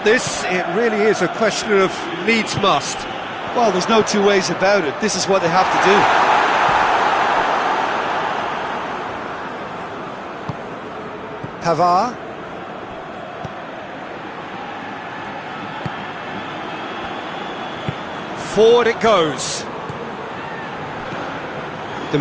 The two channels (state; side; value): identical; both; correlation 1.00